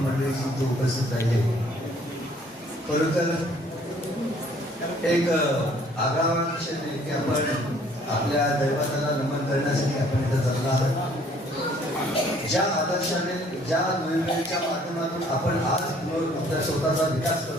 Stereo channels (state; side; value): normal; both; correlation 0.59